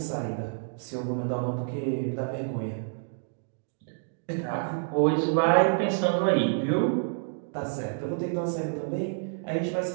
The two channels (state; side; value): silent; left; digital silence